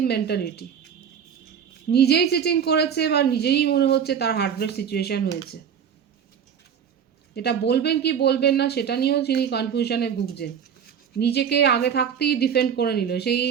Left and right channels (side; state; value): left; quieter; 7.9 dB